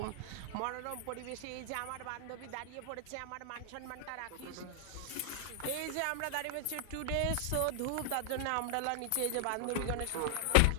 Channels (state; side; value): different; both; correlation 0.00